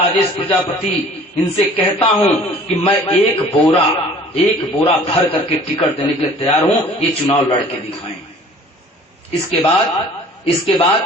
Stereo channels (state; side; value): normal; both; correlation 0.49